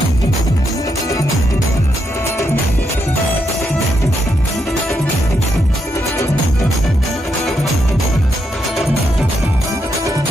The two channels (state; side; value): normal; both; correlation 0.80